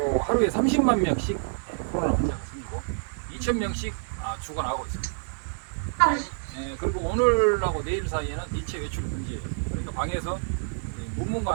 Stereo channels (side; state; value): left; silent; digital silence